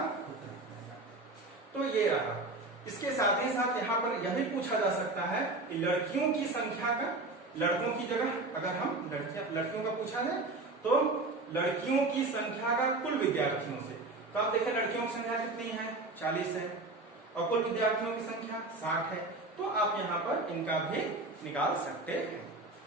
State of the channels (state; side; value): quieter; left; 3.1 dB